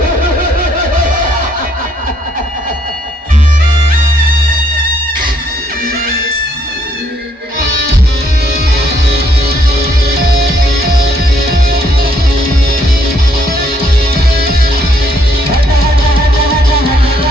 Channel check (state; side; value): normal; both; correlation 0.69